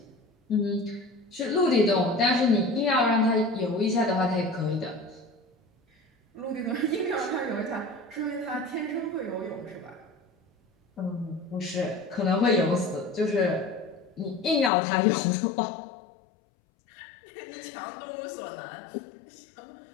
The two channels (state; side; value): drops out; right; at 14.7 s